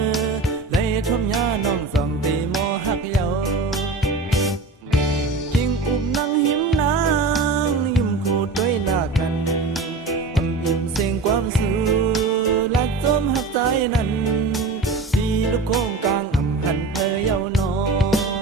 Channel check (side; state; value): left; quieter; 3.8 dB